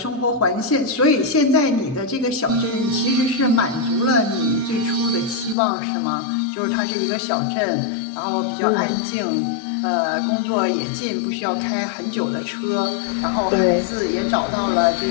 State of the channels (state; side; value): drops out; right; at 5.6 s